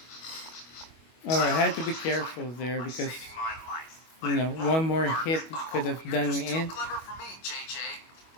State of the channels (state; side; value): late; right; 25 ms